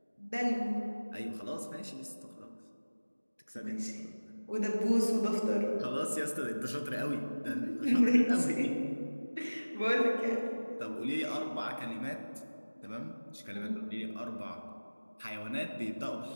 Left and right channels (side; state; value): both; inverted; correlation -1.00